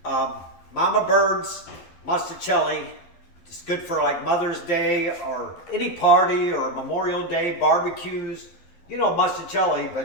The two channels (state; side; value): late; right; 12 ms